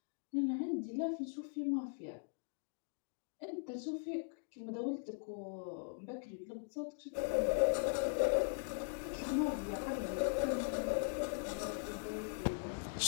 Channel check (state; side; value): silent; right; digital silence